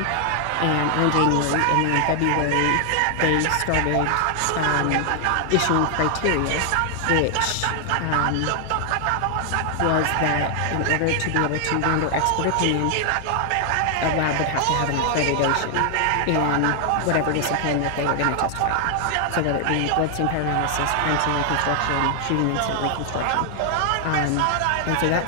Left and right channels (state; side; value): different; both; correlation 0.00